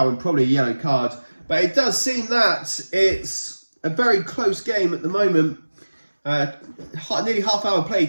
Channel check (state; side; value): inverted; both; correlation -1.00